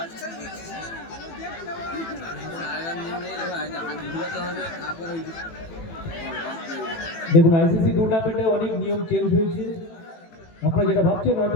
দেখুন আইসিসি টুর্নামেন্টে অনেক নিয়ম চেঞ্জ হয়েছে। আপনারা যেটা ভাবছেন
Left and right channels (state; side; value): late; right; 18 ms